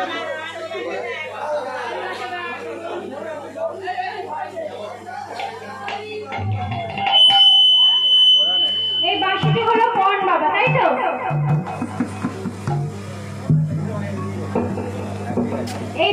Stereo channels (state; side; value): identical; both; correlation 1.00